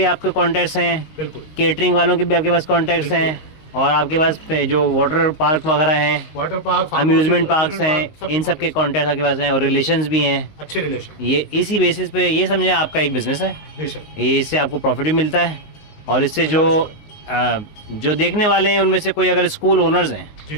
आपके कॉन्टैक्ट्स हैं, बिल्कुल। केटरिंग वालों के भी आपके पास कॉन्टैक्ट्स हैं, और आपके पास जो वाटर पार्क वगैरह हैं, वाटर पार्क, अम्यूजमेंट पार्क्स हैं, इन सब के कॉन्टैक्ट आपके पास हैं, और रिलेशंस भी हैं, अच्छे रिलेशन। ये इसी बेसिस पे ये समझे आपका एक बिजनेस है। बेशक। ये इससे आपको प्रॉफिट भी मिलता है, और इससे जो देखने वाले हैं उनमें से कोई अगर स्कूल ओनर्स हैं जी,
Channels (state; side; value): late; right; 19 ms